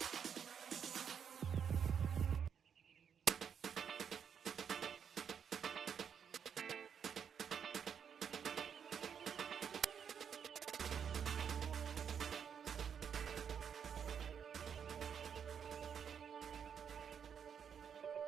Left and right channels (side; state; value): left; quieter; 7.6 dB